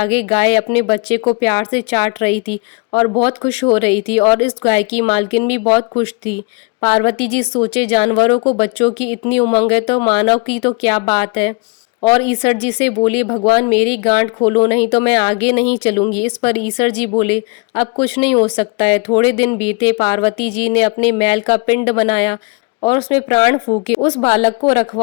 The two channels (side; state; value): right; quieter; 30.7 dB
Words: गाय अपने बच्चे को प्यार से चाट रही थी और बहुत खुश हो रही थी और इस गाय की मालकिन भी बहुत खुश थी। पार्वती जी सोचे जानवरों को बच्चों की इतनी उमंग है तो मानव की तो क्या बात है। और ईश्वर जी से बोली, भगवान मेरी गांठ खोलो नहीं तो मैं आगे नहीं चलूंगी। इस पर ईश्वर जी बोले, अब कुछ नहीं हो सकता है। थोड़े दिन बीते, पार्वती जी ने अपने मैल का पिंड बनाया और उसमें प्राण फूके। उस बालक को